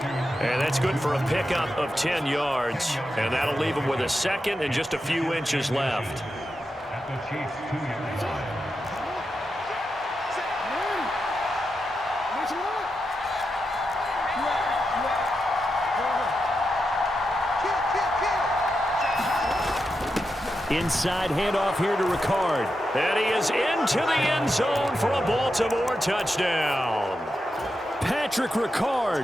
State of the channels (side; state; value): both; normal; correlation 0.88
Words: And that's good for a pickup of 10 yards. And that'll leave him with a second and just a few inches left. Inside handoff here to Ricard. And he is into the end zone for a Baltimore touchdown. Patrick